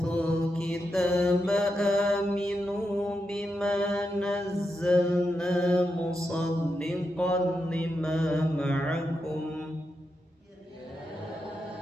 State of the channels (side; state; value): both; normal; correlation 0.86